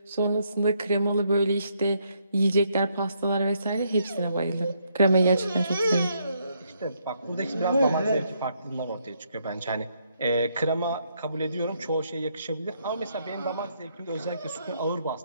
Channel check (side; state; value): both; inverted; correlation -0.74